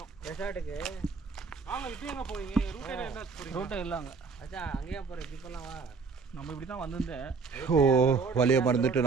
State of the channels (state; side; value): quieter; left; 4.9 dB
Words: ரெசார்ட்டுக்கு வாங்க இப்போ எங்கே போவீங்க? ரூட்டே என்ன போகிறீங்க? ரோட்டை இல்லைங்க. அச்சா அங்கேயே போகிறேன். இப்படி போகலாம் வா. நம்ம இப்படி தான் வந்திருந்தேன். ஓ வழியை மறந்துட்டு